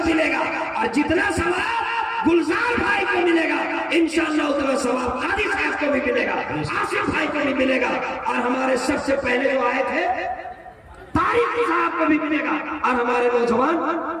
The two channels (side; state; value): both; identical; correlation 1.00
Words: मिलेगा, और जितना सवाब गुलजार भाई को मिलेगा इंशाअल्लाह उतना सवाब कादी साहब को भी मिलेगा, आसिफ भाई को भी मिलेगा, और हमारे सबसे पहले जो आए थे तारिक साहब को भी मिलेगा, और हमारे नौजवान